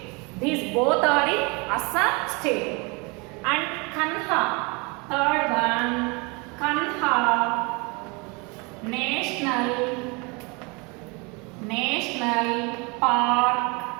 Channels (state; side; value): quieter; left; 29.2 dB